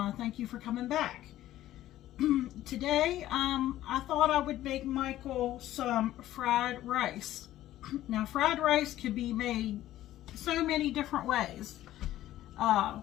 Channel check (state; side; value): quieter; right; 13.9 dB